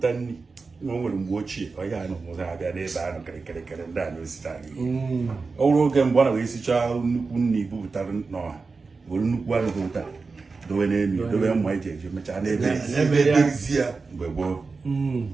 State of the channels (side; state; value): left; quieter; 4.3 dB